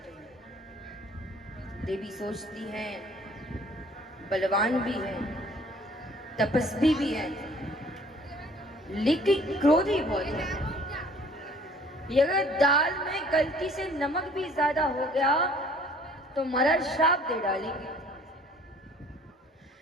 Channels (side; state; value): both; normal; correlation 0.55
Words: हैं। देवी सोचती हैं बलवान भी है, तपस्वी भी है, लेकिन क्रोधी बहुत है। अगर दाल में गलती से नमक भी ज्यादा हो गया तो महाराज श्राप दे डालेंगे।